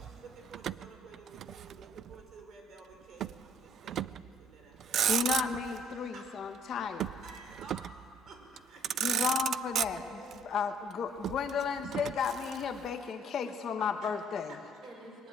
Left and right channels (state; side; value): normal; both; correlation 0.62